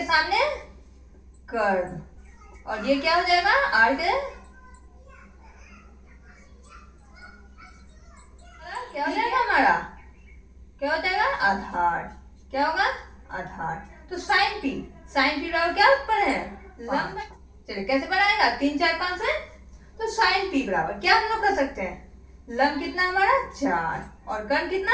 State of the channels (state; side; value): identical; both; correlation 1.00